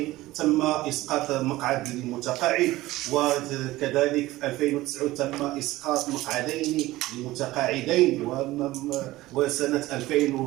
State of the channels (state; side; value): quieter; left; 17.6 dB